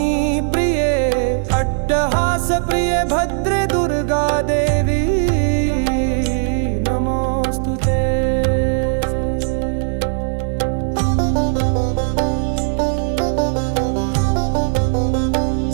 प्रिये अट्टहास प्रिये भद्रे दुर्गा देवी नमोस्तुते।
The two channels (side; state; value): left; silent; 61 dB below the other